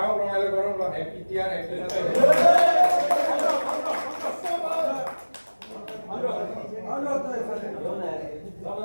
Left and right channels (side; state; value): both; inverted; correlation -1.00